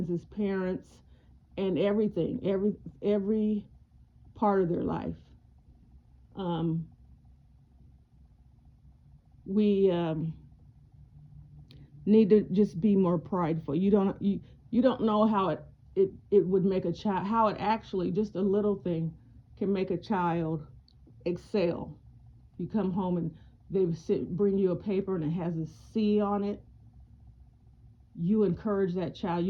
parents, and everything, every part of their life. Um, we need to just be more prideful. You don't know how it would make a child, how it actually, just a little thing can make a child excel. You come home and bring you a paper and it has a C on it. You encourage that child.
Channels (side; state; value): both; identical; correlation 1.00